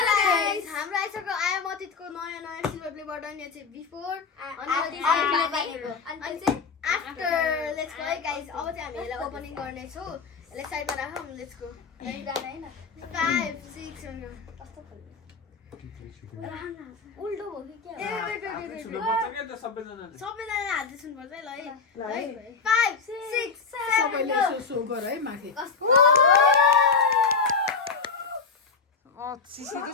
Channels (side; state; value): right; quieter; 5.0 dB